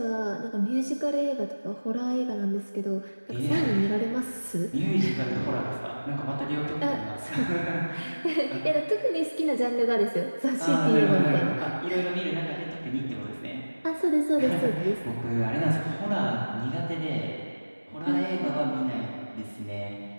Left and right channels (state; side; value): inverted; both; correlation -1.00